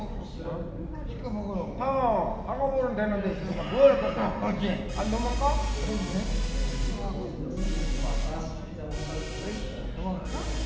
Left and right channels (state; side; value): identical; both; correlation 1.00